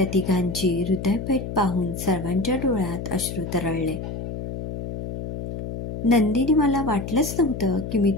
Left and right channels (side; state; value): left; noise; hum, 7 dB below the sound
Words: तिघांची हृदयभेट पाहून सर्वांच्या डोळ्यात अश्रू तरळले. नंदिनी, मला वाटलंच नव्हतं की मी